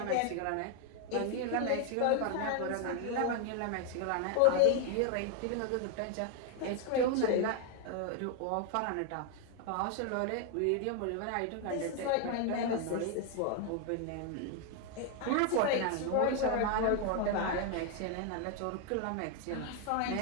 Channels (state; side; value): different; both; correlation 0.00